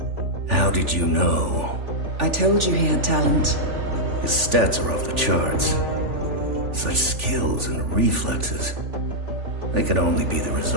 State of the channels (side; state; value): left; late; 3.4 ms